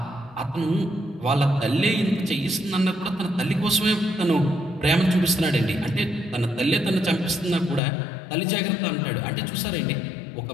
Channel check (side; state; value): right; drops out; at 7.8 s